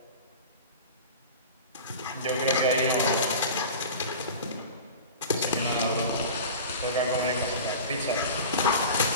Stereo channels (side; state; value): both; inverted; correlation -0.34